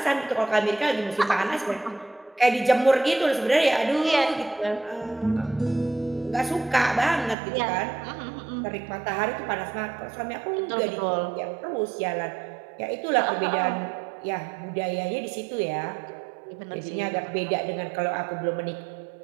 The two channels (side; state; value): left; drops out; at 7.4 s